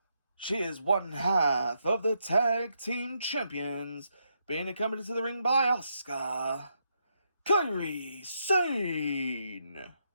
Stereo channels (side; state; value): both; inverted; correlation -0.80